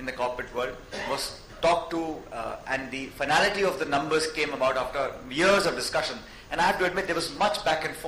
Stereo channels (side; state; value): both; identical; correlation 1.00